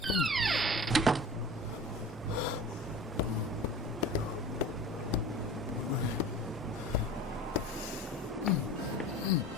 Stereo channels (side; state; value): both; normal; correlation 0.38